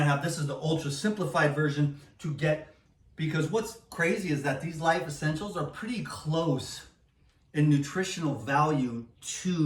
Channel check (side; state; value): both; identical; correlation 1.00